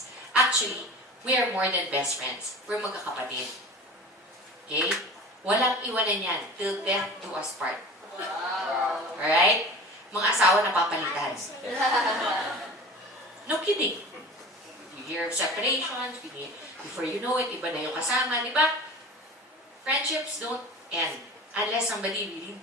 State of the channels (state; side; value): normal; both; correlation 0.37